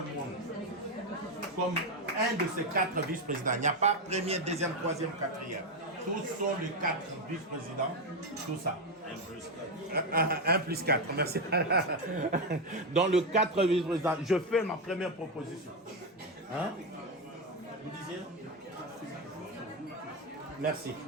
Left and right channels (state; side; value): normal; both; correlation 0.09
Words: Monde comme un de ces 4 vice-présidents. Il n'y a pas premier, deuxième, troisième, quatrième. Tous sont les 4 vice-présidents, tout ça. 1 plus 4, merci. Dans le 4 vice-présidents, je fais ma première proposition. Hein? Vous disiez? Merci.